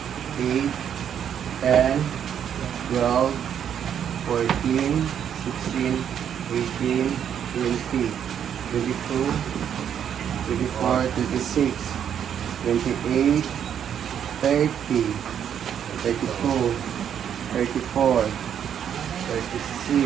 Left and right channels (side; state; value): left; quieter; 8.9 dB